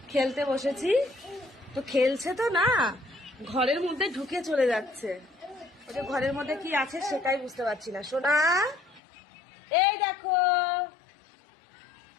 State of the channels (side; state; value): right; drops out; at 9.0 s